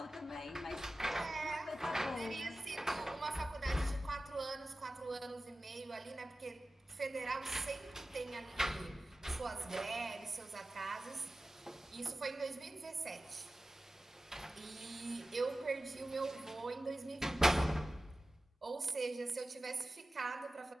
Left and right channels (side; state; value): both; normal; correlation 0.95